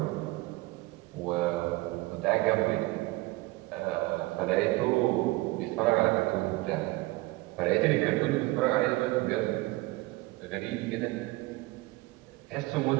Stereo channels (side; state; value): left; quieter; 21.1 dB